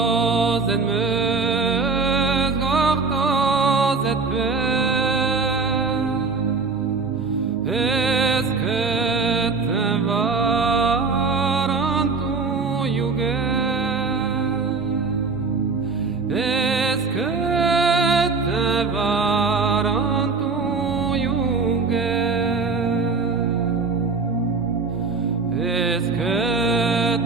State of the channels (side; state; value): left; quieter; 4.4 dB